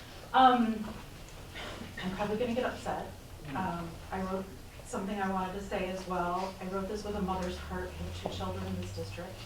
I'm probably going to get upset. I wrote something I wanted to say as well. I wrote this with a mother's heart. I have 2 children in this district.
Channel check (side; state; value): both; identical; correlation 1.00